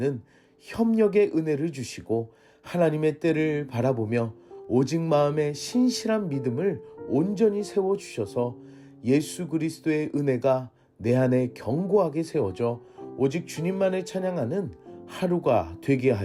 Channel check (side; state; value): both; identical; correlation 1.00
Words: 협력의 은혜를 주시고 하나님의 때를 바라보며 오직 마음의 신실한 믿음을 온전히 세워주셔서 예수 그리스도의 은혜가 내 안에 견고하게 세워져 오직 주님만을 찬양하는 하루가 되게